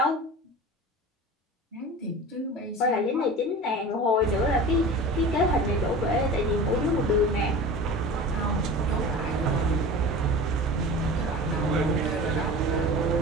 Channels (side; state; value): both; normal; correlation 0.35